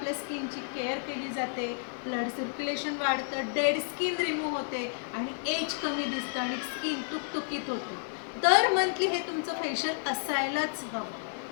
स्किनची केअर केली जाते, ब्लड सर्क्युलेशन वाढतं, डेड स्किन रिमूव्ह होते आणि एज कमी दिसतं आणि स्किन तुकतुकीत होते. दर मंथली हे तुमचं फेशियल असायलाच हवं.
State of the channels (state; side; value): silent; right; digital silence